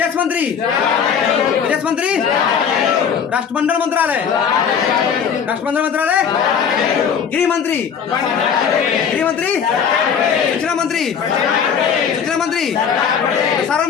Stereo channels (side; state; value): right; quieter; 7.2 dB